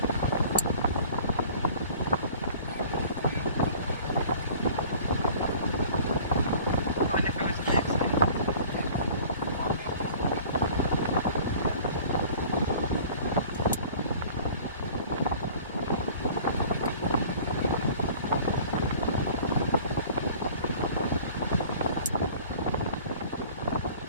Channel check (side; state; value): both; inverted; correlation -0.47